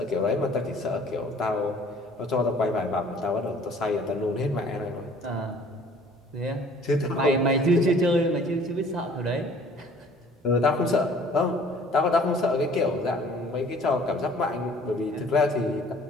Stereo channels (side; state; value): both; normal; correlation 0.53